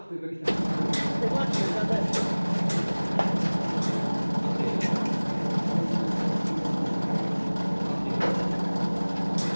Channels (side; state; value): both; inverted; correlation -1.00